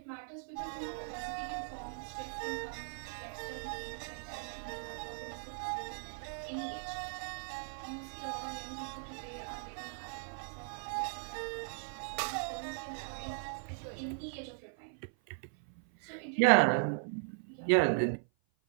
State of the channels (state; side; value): silent; left; 52 dB below the other